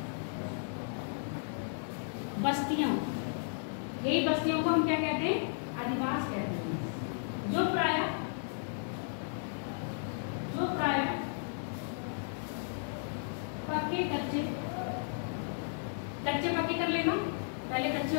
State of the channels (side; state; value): right; silent; digital silence